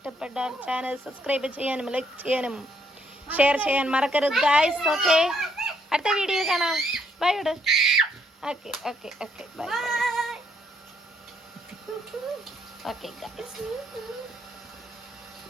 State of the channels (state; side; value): normal; both; correlation 0.71